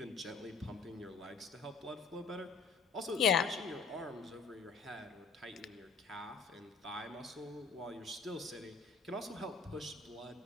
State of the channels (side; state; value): right; quieter; 4.8 dB